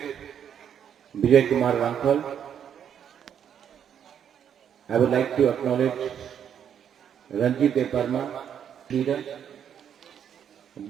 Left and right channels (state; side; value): quieter; left; 8.7 dB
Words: Vijay Kumar Ramphal. I would like to acknowledge Ranjit Deparma, leader,